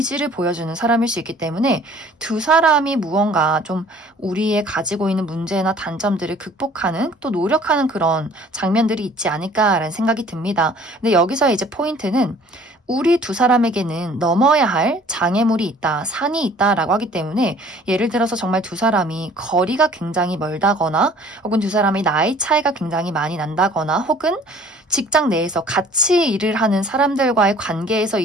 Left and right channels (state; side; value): normal; both; correlation 0.52